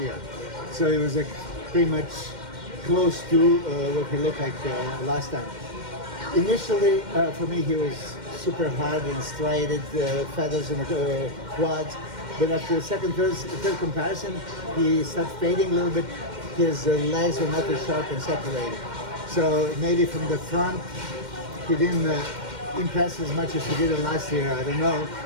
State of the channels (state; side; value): late; left; 2.1 ms